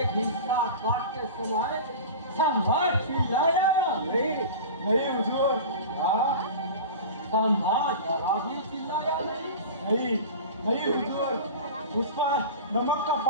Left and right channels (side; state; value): both; inverted; correlation -0.32